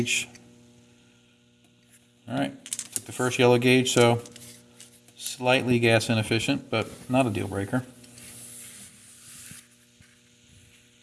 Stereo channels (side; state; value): both; identical; correlation 1.00